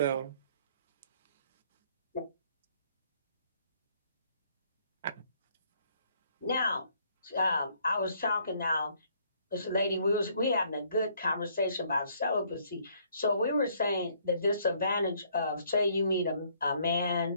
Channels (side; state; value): both; inverted; correlation -0.65